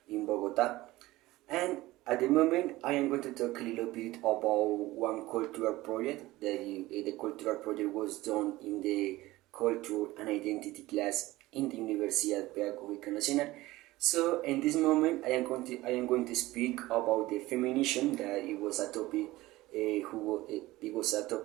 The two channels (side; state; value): left; quieter; 18.3 dB